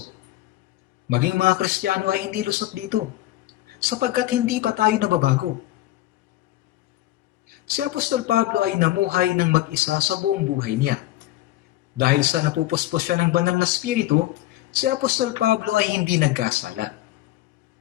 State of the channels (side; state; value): right; quieter; 15.6 dB